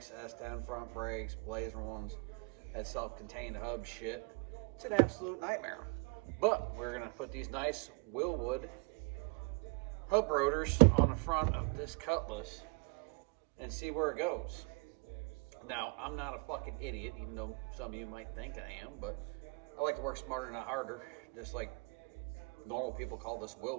S10 front brakes, Blazer ones, that self-contained hub shit, it's an absolute nightmare. But we're gonna put these nice Wilwood hub rotors on the front of this Cutlass and see where it goes. Now, I'm not a fucking idiot, even though some of you might think I am, but I like to work smarter, not harder. Just like normal people call this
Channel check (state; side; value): quieter; left; 31.4 dB